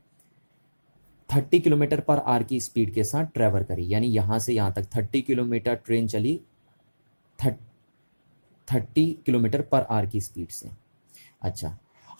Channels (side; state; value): both; inverted; correlation -1.00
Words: 30 किलोमीटर पर आवर की स्पीड के साथ ट्रैवल करी, यानी यहाँ से यहाँ तक 30 किलोमीटर ट्रेन चली 30 किलोमीटर पर आवर की स्पीड से। अच्छा,